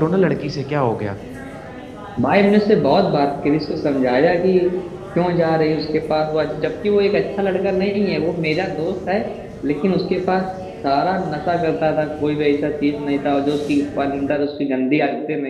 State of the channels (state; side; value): identical; both; correlation 1.00